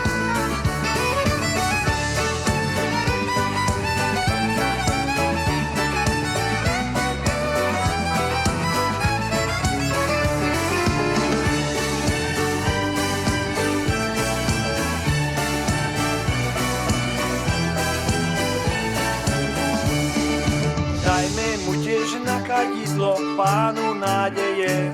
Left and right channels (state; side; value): identical; both; correlation 1.00